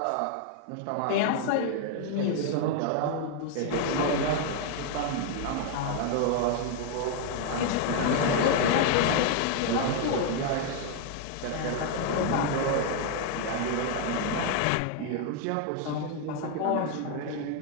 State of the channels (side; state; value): both; different; correlation 0.00